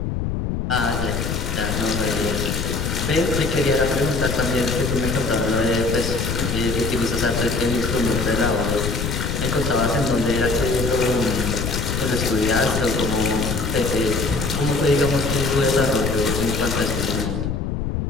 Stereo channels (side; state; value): left; noise; rumble, 2 dB below the sound